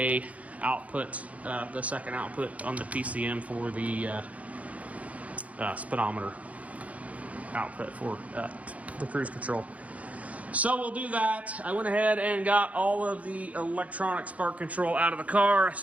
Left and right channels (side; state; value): left; late; 0.067 ms